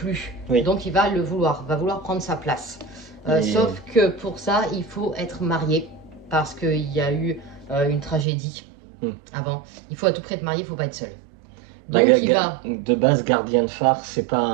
Oui. Donc il va va vouloir prendre sa place. Et- Sauf que pour ça, il faut être marié, parce qu'il y a eu une tragédie avant. Il faut à tout prix être marié, il faut pas être seul. Donc il va... De base, gardien de phare, c'est pas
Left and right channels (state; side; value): drops out; left; at 8.2 s